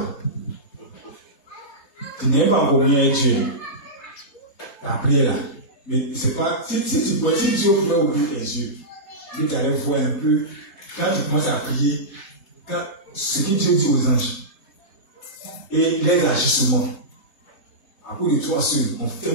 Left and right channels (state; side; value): late; right; 3.3 ms